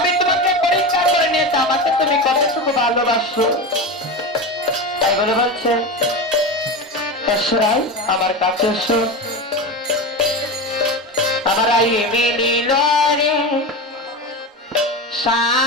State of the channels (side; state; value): both; normal; correlation 0.23